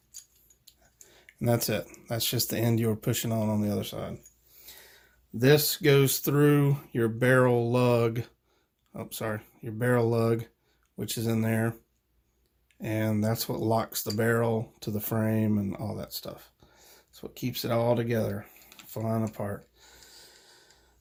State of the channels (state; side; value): identical; both; correlation 1.00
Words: And that's it. That's just the end you were pushing on the other side. This goes through your barrel lug. Oh, sorry. Your barrel lug, which is in there. And that's what locks the barrel to the frame and all that stuff. That's what keeps it all together, flying apart.